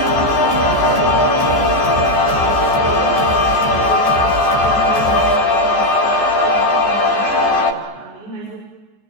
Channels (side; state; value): right; late; 14 ms